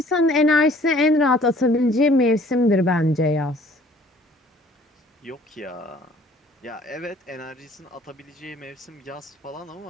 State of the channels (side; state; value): both; normal; correlation 0.56